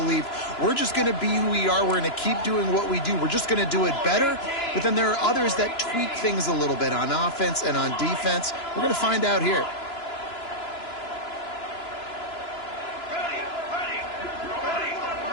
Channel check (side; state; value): right; late; 2.9 ms